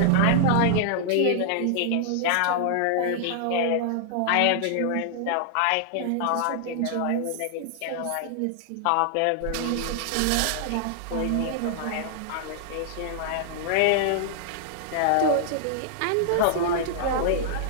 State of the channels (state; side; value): different; both; correlation -0.01